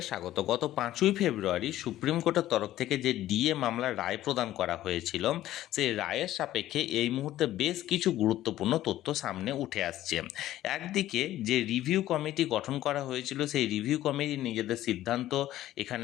স্বাগত। গত 5ই ফেব্রুয়ারি সুপ্রিম কোর্টের তরফ থেকে যে ডিএ মামলার রায় প্রদান করা হয়েছিল, সেই রায়ের সাপেক্ষে এই মুহূর্তে বেশ কিছু গুরুত্বপূর্ণ তথ্য সামনে উঠে আসছে। একদিকে যে রিভিউ কমিটি গঠন করা হয়েছিল, সেই রিভিউ কমিটি নিজেদের সিদ্ধান্ত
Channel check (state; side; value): quieter; right; 14.0 dB